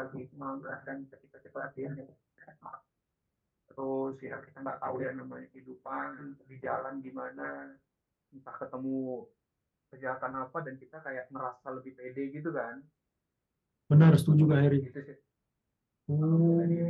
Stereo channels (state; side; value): identical; both; correlation 1.00